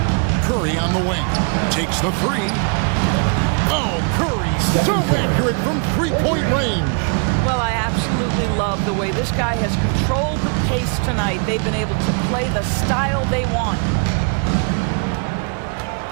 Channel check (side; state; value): left; quieter; 39.4 dB